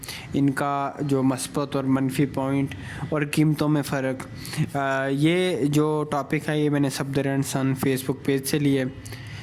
इनका जो मस्बत और मनफी पॉइंट और कीमतों में फ़र्क। ये जो टॉपिक है ये मैंने सफदर सन फेसबुक पेज से लिए,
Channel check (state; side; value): identical; both; correlation 1.00